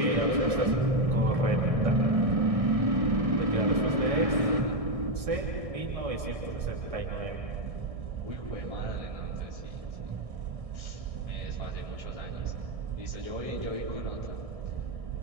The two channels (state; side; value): late; left; 1.6 ms